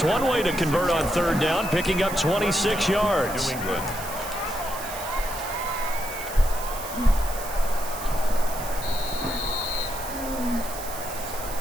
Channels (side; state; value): right; noise; hiss, 11 dB below the sound